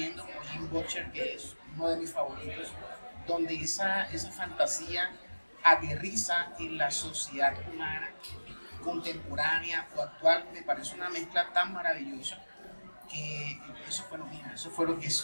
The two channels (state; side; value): inverted; both; correlation -1.00